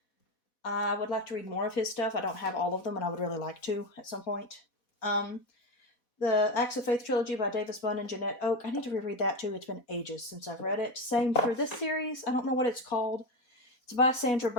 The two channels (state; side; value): late; right; 4.1 ms